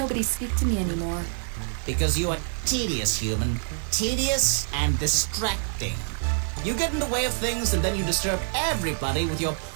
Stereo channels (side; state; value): left; silent; digital silence